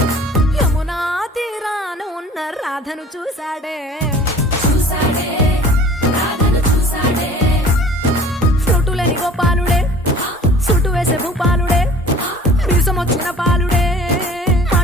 యమునా తీరాన ఉన్న రాధను చూశాడే చూసాడే రాధను చూసాడే ఫ్రూటులేని గోపాలుడే సుటు వేసే భూపాలుడే మీసమొచ్చిన పాలుడే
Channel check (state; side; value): normal; both; correlation 0.47